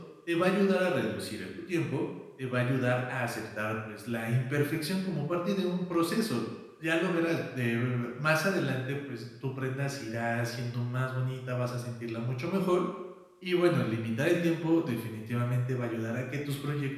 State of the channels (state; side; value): identical; both; correlation 1.00